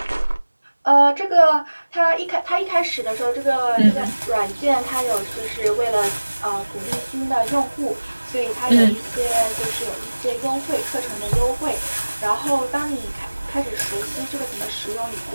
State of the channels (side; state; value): both; inverted; correlation -1.00